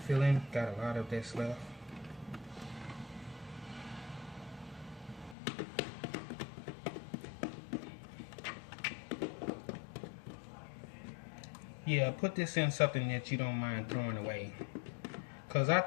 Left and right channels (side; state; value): right; drops out; at 5.4 s